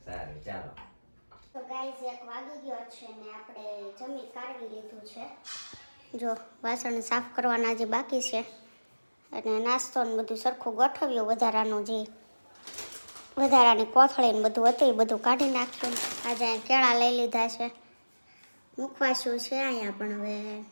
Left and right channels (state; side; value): inverted; both; correlation -1.00